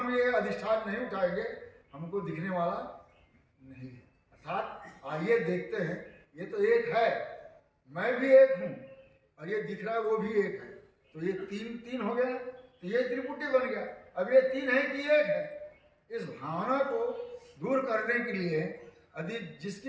ये अधिष्ठान नहीं उठाएंगे हमको दिखने वाला नहीं है। अर्थात आइए देखते हैं, ये तो एक है, मैं भी एक हूँ और ये दिख रहा है वो भी एक है, तो ये तीन हो गया, तो ये त्रिपुटी बन गया। अब ये तीन है कि एक है, इस भावना को दूर करने के लिए यदि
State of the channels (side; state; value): both; identical; correlation 1.00